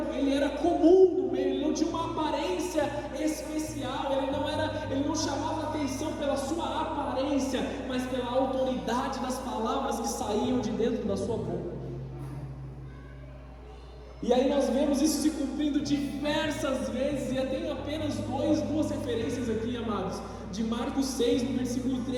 comum no meio, ele não tinha uma aparência especial, ele não chamava atenção pela sua aparência, mas pela autoridade das palavras que saíam de dentro da sua boca. E aí nós vemos isso se cumprindo diversas vezes, e eu tenho apenas duas referências aqui, amados, de Marcos 6, no versículo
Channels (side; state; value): both; identical; correlation 1.00